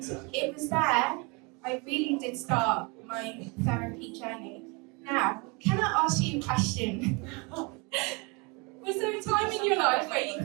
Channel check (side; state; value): left; quieter; 29.6 dB